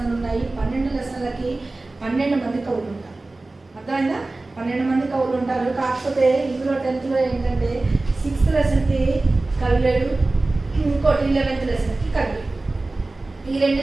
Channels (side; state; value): left; quieter; 3.1 dB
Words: ఉన్నాయి. 12 లెసన్లకి 12 మంది కవులు ఉంటారు. అర్థమైందా? 12 మంది కవులు ఉంటారు. కాకపోతే ఇందులో 10th ఏంటంటే 6th లెసన్కి కవి లేడు, ఇంకోటి 11th లెసన్కి కవి. ఈ 2